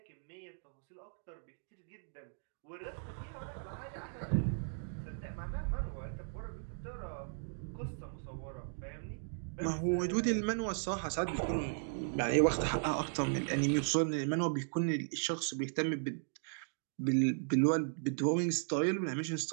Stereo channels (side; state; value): left; silent; digital silence